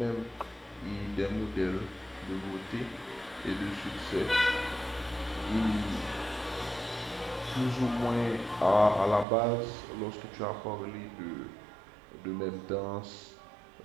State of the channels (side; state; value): left; drops out; at 9.2 s